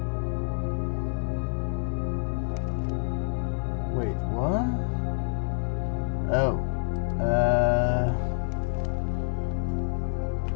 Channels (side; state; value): right; silent; 59 dB below the other